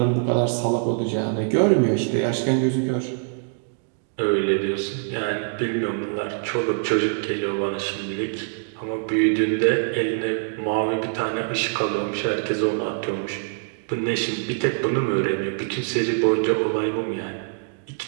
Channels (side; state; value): left; silent; digital silence